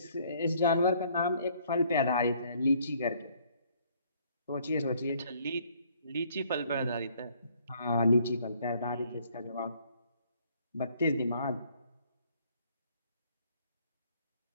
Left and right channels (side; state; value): both; inverted; correlation -0.63